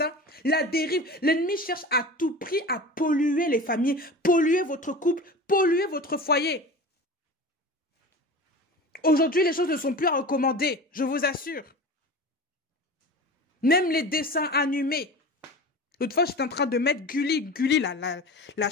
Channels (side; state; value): both; normal; correlation 0.34